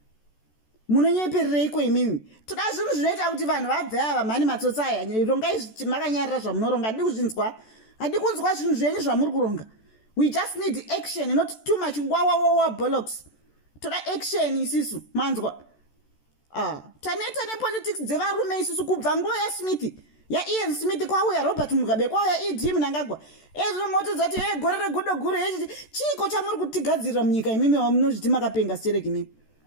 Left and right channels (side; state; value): right; late; 14 ms